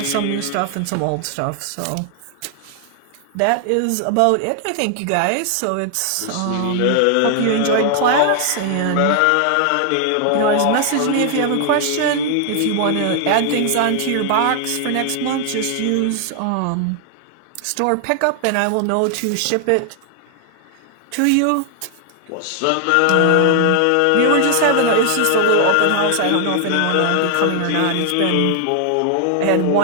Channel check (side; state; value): both; different; correlation 0.00